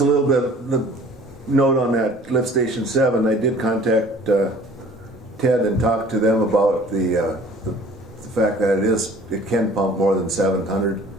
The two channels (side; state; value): both; normal; correlation 0.50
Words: a little bit of note on that lift station 7. I did contact Ted and talk to them about the fact that it can pump more than 700.